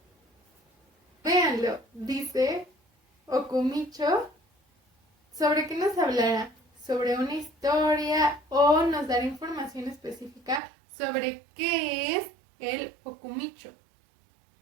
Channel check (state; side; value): drops out; left; at 10.6 s